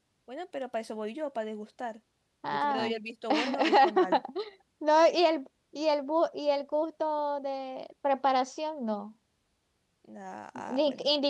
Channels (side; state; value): both; identical; correlation 1.00